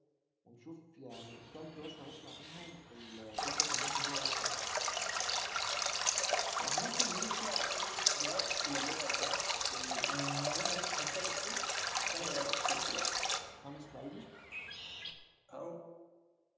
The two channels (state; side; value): identical; both; correlation 1.00